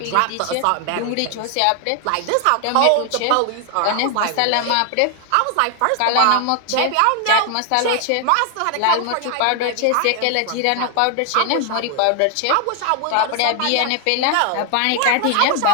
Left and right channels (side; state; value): both; different; correlation 0.00